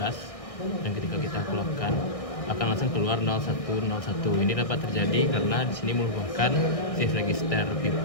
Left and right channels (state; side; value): late; right; 1.6 ms